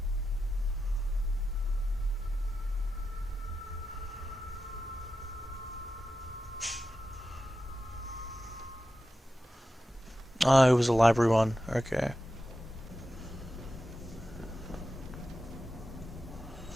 Oh, it was a library one. Okay.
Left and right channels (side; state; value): both; normal; correlation 0.90